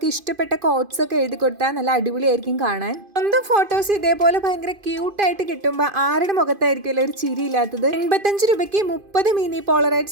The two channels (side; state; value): left; late; 2.5 ms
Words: ഇഷ്ടപ്പെട്ട കോട്ട്സ് ഒക്കെ എഴുതി കൊടുത്താൽ നല്ല അടിപൊളിയായിരിക്കും കാണാൻ. സ്വന്തം ഫോട്ടോസ് ഇതേപോലെ ഭയങ്കര ക്യൂട്ടായിട്ട് കിട്ടുമ്പോൾ ആരുടെ മുഖത്തായിരിക്കുമല്ലോ ഒരു ചിരി ഇല്ലാത്തത്. 85 രൂപയ്ക്ക് 30 മിനി